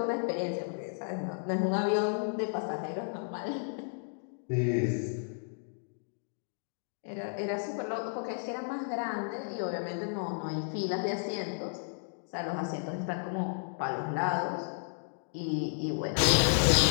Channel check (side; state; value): right; silent; digital silence